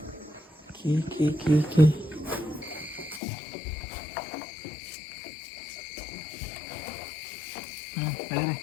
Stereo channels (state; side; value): drops out; right; at 3.2 s